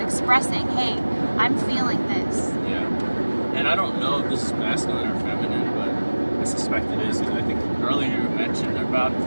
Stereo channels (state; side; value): inverted; both; correlation -1.00